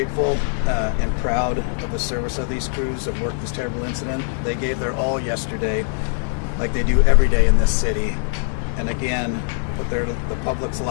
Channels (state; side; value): silent; right; 65 dB below the other